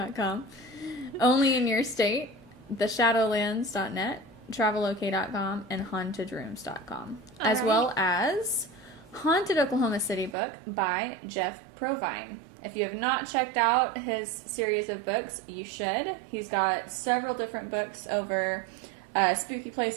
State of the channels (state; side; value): drops out; left; at 10.4 s